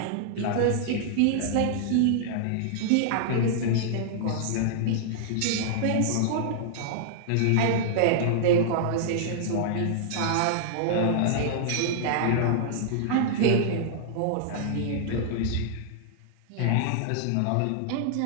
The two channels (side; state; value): both; different; correlation -0.01